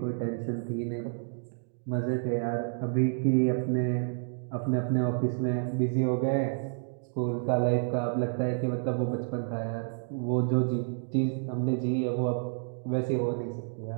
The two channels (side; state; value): left; silent; digital silence